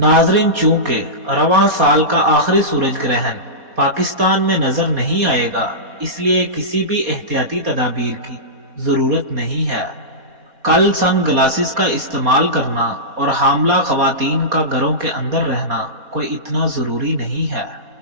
चूंकि रवां साल का आखिरी सूरज ग्रहण पाकिस्तान में नजर नहीं आएगा, इसलिए किसी भी एहतियाती तदाबीर की जरूरत नहीं है। कल सन ग्लासेस का इस्तेमाल करना और हामला खवातीन का घरों के अंदर रहना कोई इतना जरूरी नहीं है।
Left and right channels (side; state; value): left; late; 4.2 ms